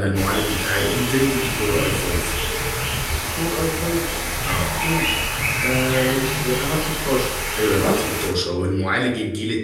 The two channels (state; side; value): identical; both; correlation 1.00